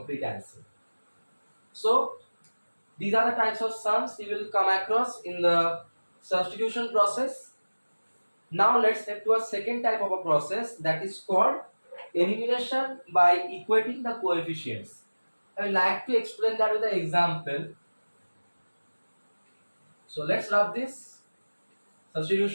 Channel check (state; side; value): inverted; both; correlation -1.00